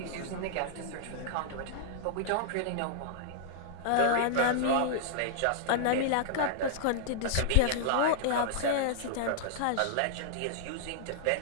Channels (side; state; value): both; different; correlation -0.01